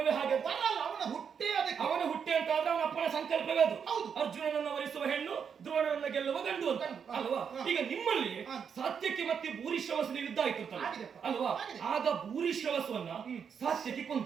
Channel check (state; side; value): quieter; left; 7.0 dB